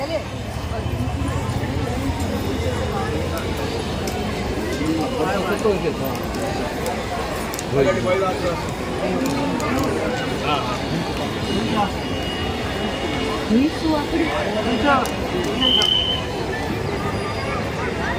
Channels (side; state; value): both; identical; correlation 1.00